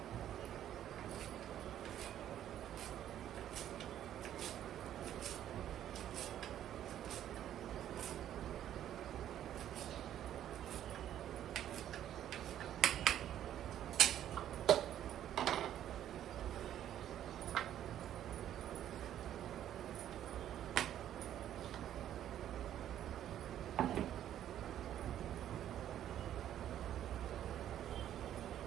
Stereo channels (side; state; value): left; quieter; 11.1 dB